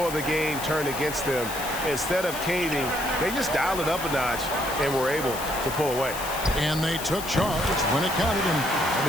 of the game turned against them, instead of caving, they just dialed it up a notch and were able to pull away. And they took charge when it counted, and they'll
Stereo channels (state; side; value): noise; left; hiss, 9 dB below the sound